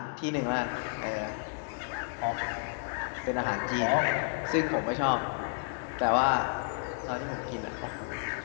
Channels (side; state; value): right; silent; 57 dB below the other